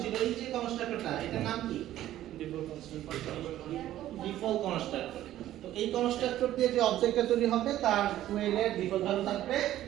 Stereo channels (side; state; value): left; quieter; 13.3 dB